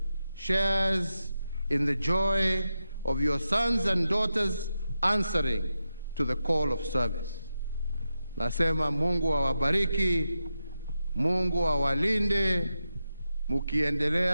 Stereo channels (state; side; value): inverted; both; correlation -0.88